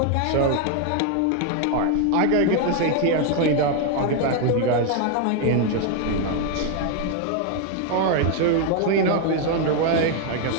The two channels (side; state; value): both; different; correlation 0.01